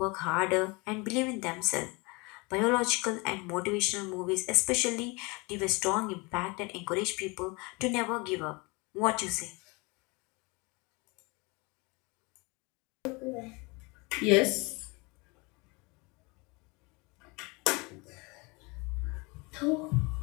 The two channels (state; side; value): quieter; right; 27.3 dB